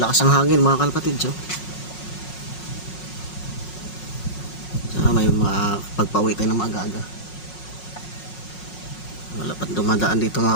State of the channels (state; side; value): late; right; 5.5 ms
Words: ang hangin mga kalpatids, oh. May mga pagpauwi tayo ng maaga-aga. Wala pa dumadaan dito